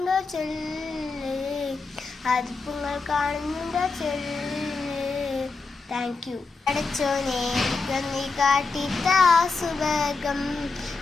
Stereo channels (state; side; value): quieter; right; 4.1 dB